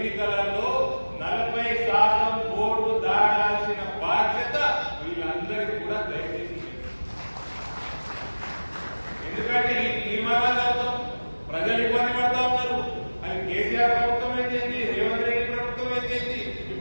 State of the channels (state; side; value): inverted; both; correlation -1.00